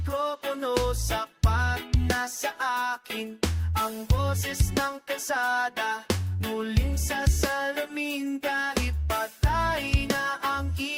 sapat na sa akin. Ang boses ng kalsada muling sasalamin kahit patay na ang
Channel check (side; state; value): both; identical; correlation 1.00